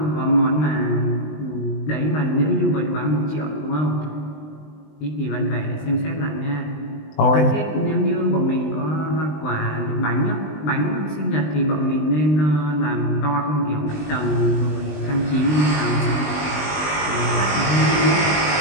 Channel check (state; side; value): late; right; 20 ms